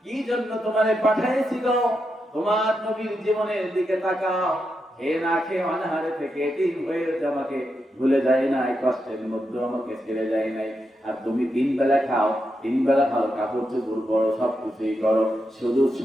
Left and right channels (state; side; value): normal; both; correlation 0.85